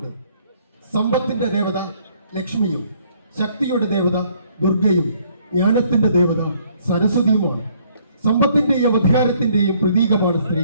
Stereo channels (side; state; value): both; inverted; correlation -0.64